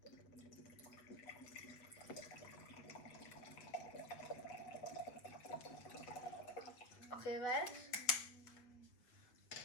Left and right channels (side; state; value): right; late; 8.0 ms